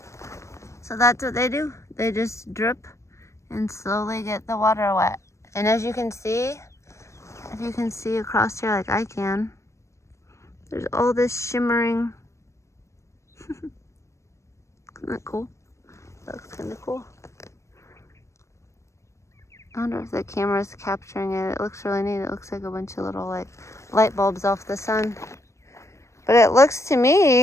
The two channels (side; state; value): right; late; 0.14 ms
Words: So that's what they do. They just drip and slowly get the water wet. And as you can see, if you can see across here like I can, there's all this shimmering. Isn't that cool? That looks kind of cool. I wonder if the camera's capturing it. It looks really neat. It looks like a bunch of little like light bulbs off the sun. But it looks to